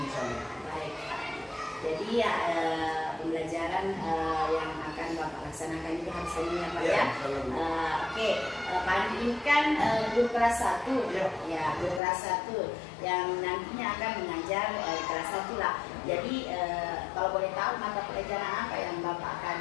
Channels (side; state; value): right; drops out; at 12.0 s